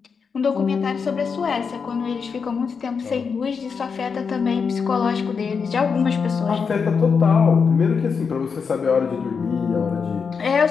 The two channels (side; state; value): right; quieter; 5.7 dB